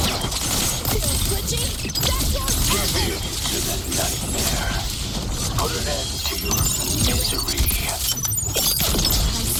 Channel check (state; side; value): identical; both; correlation 1.00